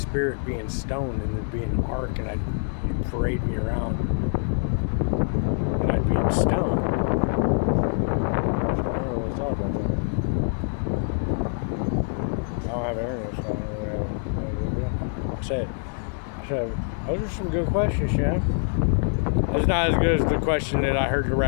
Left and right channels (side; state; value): right; silent; 62 dB below the other